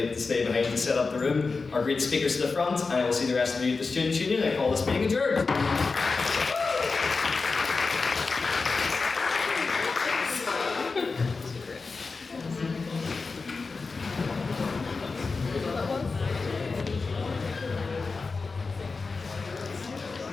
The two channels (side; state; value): right; quieter; 4.3 dB